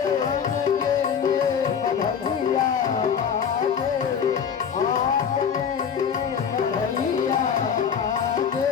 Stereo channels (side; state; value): right; quieter; 7.3 dB